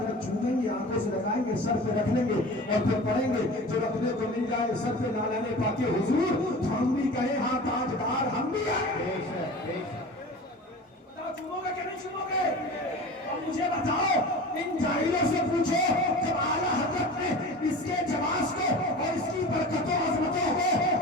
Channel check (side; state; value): both; normal; correlation 0.36